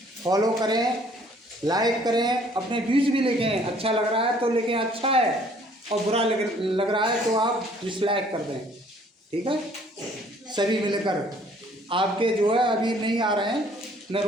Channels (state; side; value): normal; both; correlation 0.59